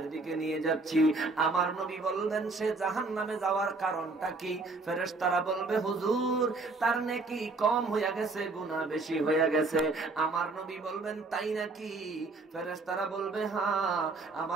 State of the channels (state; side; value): quieter; left; 3.5 dB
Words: দিকে নিয়ে যাচ্ছি। আমার নবী বললেন, সে জাহান্নামে যাওয়ার কারণটা কি? ফেরেশতারা বলবে, হুজুর তার নেকি কম হইয়া গেছে, গুনাহ বেশি হইয়া গেছে। আমার নবী বলবেন, তাই নাকি? ফেরেশতারা বলবে, হ্যাঁ।